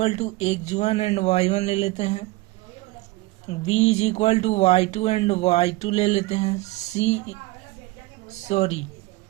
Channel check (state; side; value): quieter; left; 20.6 dB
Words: to x1 and y1 ले लेते हैं, B is equal to y2 and y2 ले लेते हैं,